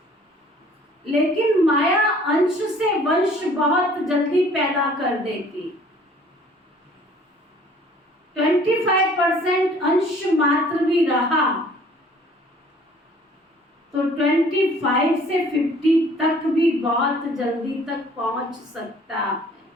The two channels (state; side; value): normal; both; correlation 0.54